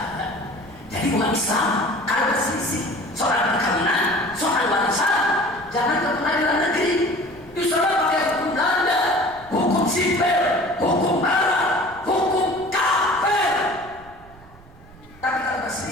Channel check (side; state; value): right; noise; rumble, 23 dB below the sound